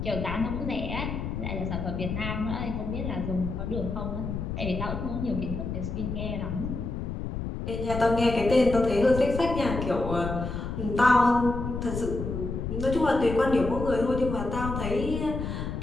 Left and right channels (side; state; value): left; noise; rumble, 4 dB below the sound